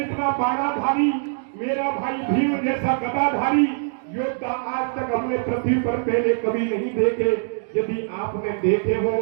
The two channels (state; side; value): silent; left; digital silence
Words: बाणाधारी, मेरा भाई भीम जैसा गदाधारी योद्धा आज तक हमने पृथ्वी पर पहले कभी नहीं देखे। यदि आपने देखे हो